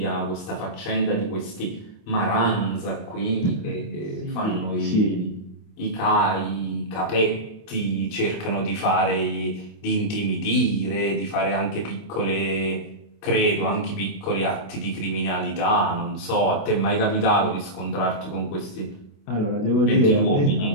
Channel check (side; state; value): right; late; 28 ms